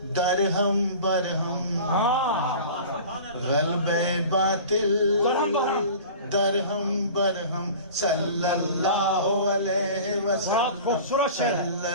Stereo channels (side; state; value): both; inverted; correlation -0.40